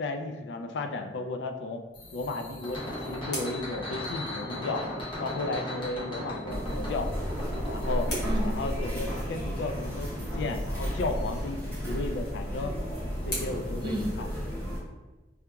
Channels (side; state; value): both; normal; correlation 0.48